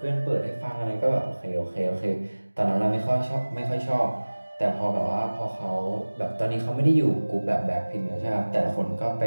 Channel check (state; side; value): inverted; both; correlation -1.00